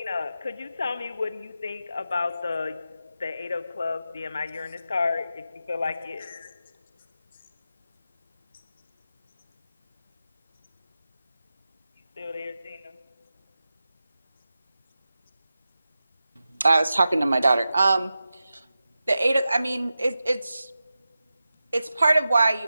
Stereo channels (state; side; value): inverted; both; correlation -0.92